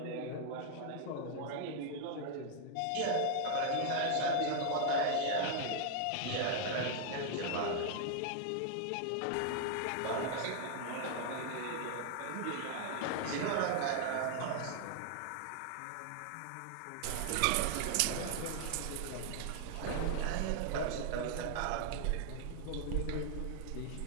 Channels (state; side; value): different; both; correlation 0.00